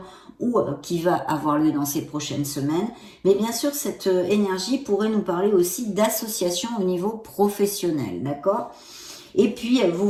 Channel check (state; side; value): identical; both; correlation 1.00